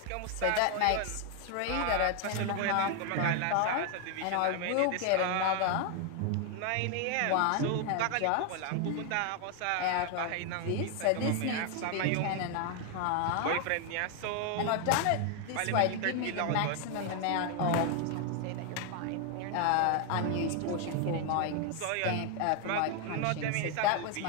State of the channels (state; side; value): different; both; correlation 0.01